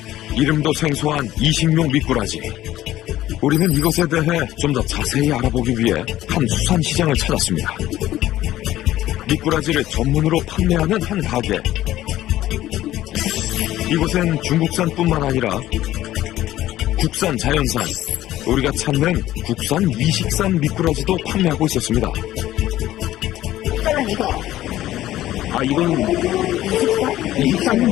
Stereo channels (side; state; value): right; quieter; 14.3 dB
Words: 이름도 생소한 이식용 미꾸라지. 우리는 이것에 대해 좀 더 자세히 알아보기 위해 한 수산시장을 찾았습니다. 미꾸라지를 전문으로 판매하는 한 가게. 이곳엔 중국산뿐만 아니라 국산, 자연산, 우리가 찾는 국산 이식산 미꾸라지도 판매하고 있었습니다. 색깔은 이거. 아, 이건